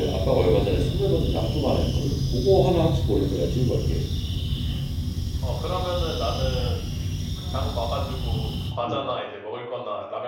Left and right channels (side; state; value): both; identical; correlation 1.00